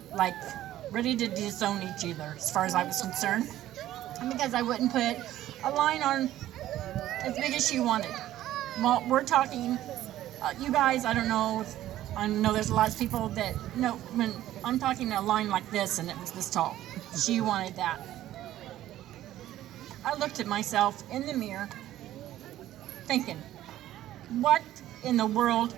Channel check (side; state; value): left; quieter; 13.6 dB